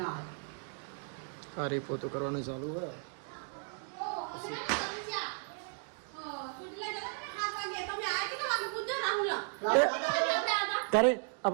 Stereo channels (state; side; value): silent; left; 54 dB below the other